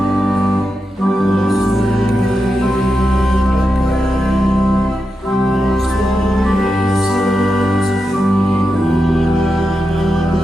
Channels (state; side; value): normal; both; correlation 0.88